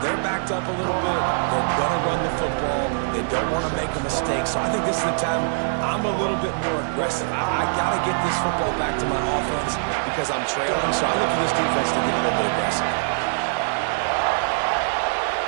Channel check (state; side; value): silent; left; digital silence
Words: they're backed up a little bit. They're going to run the football. They don't want to make a mistake. So I think this is the time I'm a little bit more aggressive. I got to get this football back to my offense because I'm trailing. So I look for this defense to get a little bit aggressive.